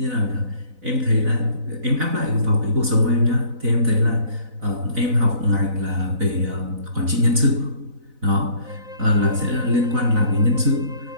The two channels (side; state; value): left; late; 4.0 ms